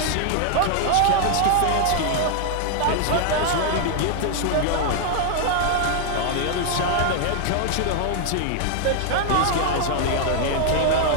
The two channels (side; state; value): both; different; correlation 0.00